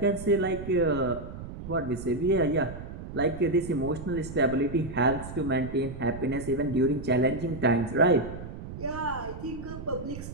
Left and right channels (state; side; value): noise; right; rumble, 10 dB below the sound